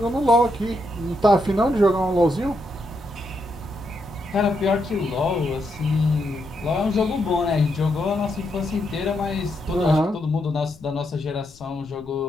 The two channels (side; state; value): left; noise; rumble, 23 dB below the sound